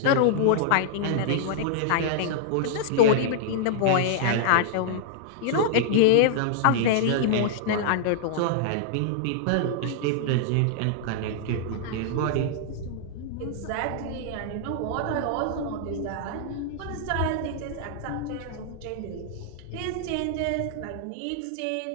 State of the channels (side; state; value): both; different; correlation -0.01